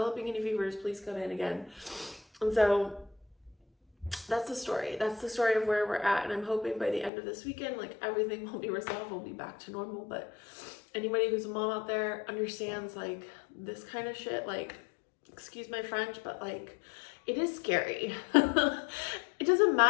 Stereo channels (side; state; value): right; drops out; at 7.1 s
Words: any fevers, please come in again. And so that's the story of where we're at, and I'm hoping by the end of this weekend like everything will be resolved, we'll be back to normal. But anybody who's a mom out there understands like this kind of shit, like, excuse my French, but like it is scary. It doesn't